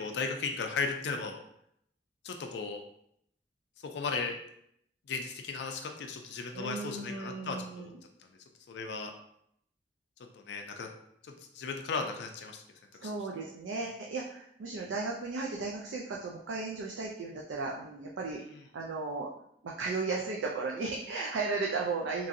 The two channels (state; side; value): normal; both; correlation 0.11